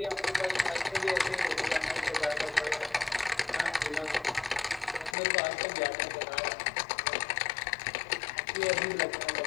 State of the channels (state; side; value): drops out; right; at 5.2 s